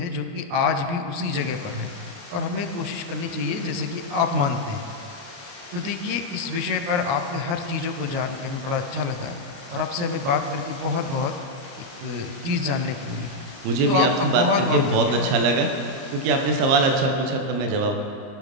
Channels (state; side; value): late; left; 30 ms